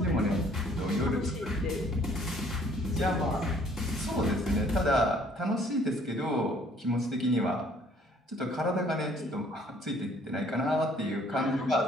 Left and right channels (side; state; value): both; normal; correlation 0.59